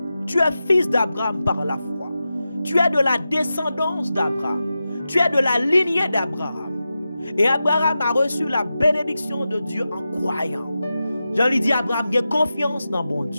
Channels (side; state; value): both; inverted; correlation -0.92